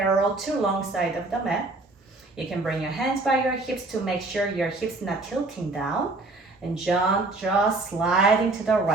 to long side of the mat. You can bring your hands by your hips to make sure your hips not tilting down. And just sliding to the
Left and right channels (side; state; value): left; quieter; 3.2 dB